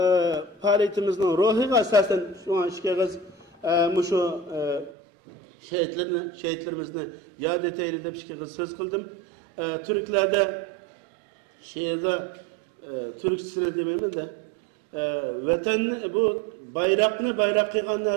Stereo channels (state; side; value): drops out; left; at 4.9 s